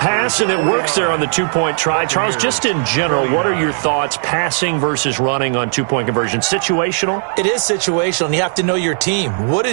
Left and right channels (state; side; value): silent; left; digital silence